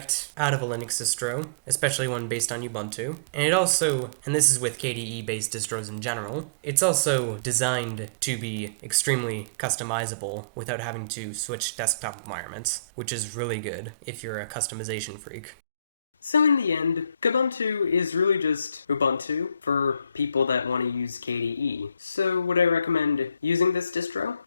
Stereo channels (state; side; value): inverted; both; correlation -0.44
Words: out of a Linux distro, especially one based on Ubuntu. And it also, and this is with KDE-based distros in general, it's also designed to be extremely customizable without having to switch desktop environments, which is really good if you're a customization freak. So in the end, Kubuntu is really just Ubuntu for people that want to use KDE. So would I recommend using this distro?